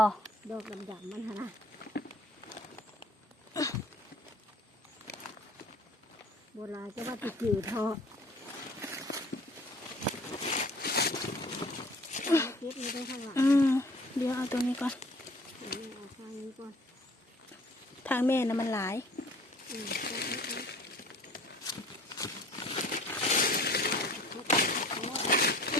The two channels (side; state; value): both; normal; correlation 0.49